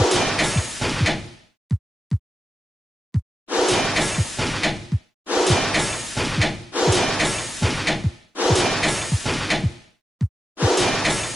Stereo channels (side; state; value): both; normal; correlation 0.91